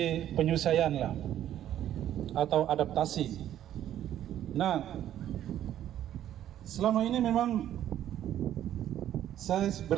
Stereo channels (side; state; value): left; quieter; 11.5 dB